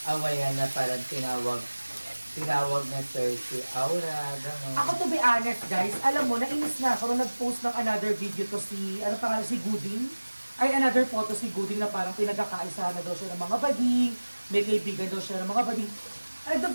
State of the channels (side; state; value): both; inverted; correlation -1.00